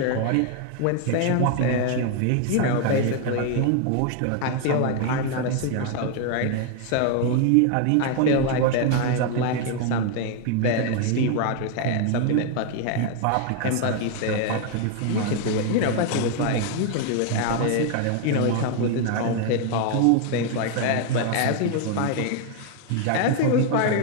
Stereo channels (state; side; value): different; both; correlation 0.00